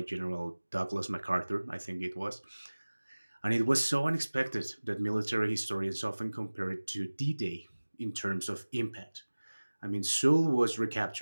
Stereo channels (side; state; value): both; inverted; correlation -1.00